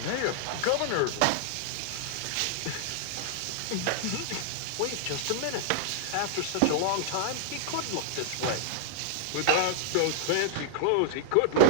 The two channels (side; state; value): both; different; correlation -0.01